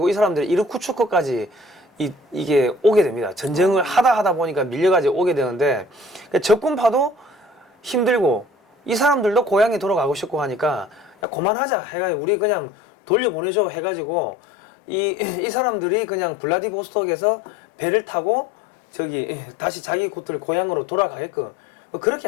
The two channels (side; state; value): right; drops out; at 11.2 s